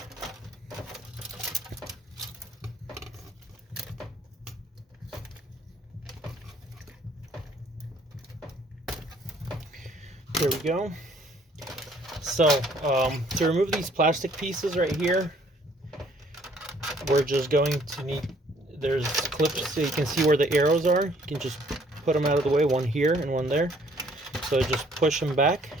there we go. So to remove these plastic pieces right here, we're just going to need, there's clips so you can see where the arrows are. You can just put them out of the way, one here and one there. So just push them back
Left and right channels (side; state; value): both; normal; correlation 0.61